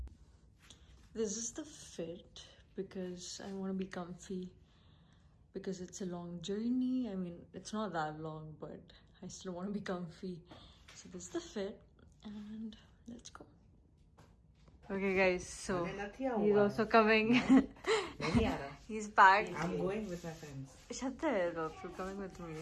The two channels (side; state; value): both; identical; correlation 1.00